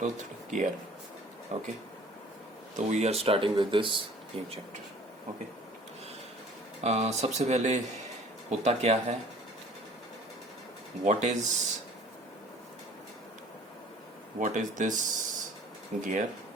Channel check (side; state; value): both; normal; correlation 0.50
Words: गियर। ओके, तो we are starting with this new chapter. Okay, सबसे पहले होता क्या है, what is this gear.